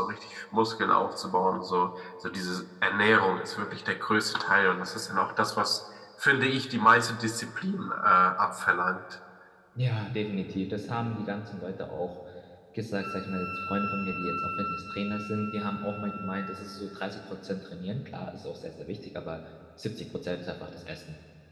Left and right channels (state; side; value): identical; both; correlation 1.00